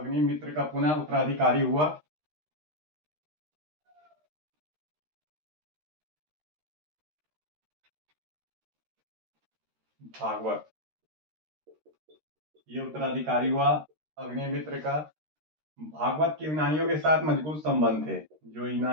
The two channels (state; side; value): late; left; 13 ms